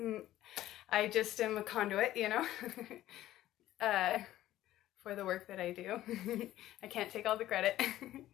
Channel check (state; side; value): quieter; right; 14.2 dB